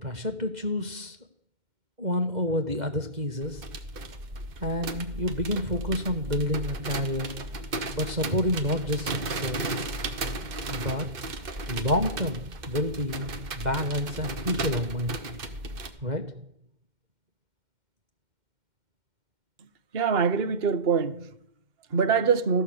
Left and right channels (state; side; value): late; left; 2.1 ms